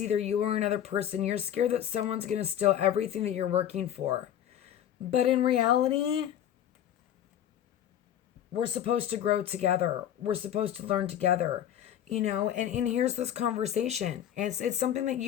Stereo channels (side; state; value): right; quieter; 10.4 dB